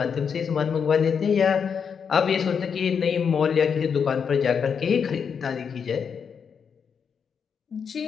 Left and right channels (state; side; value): quieter; right; 6.7 dB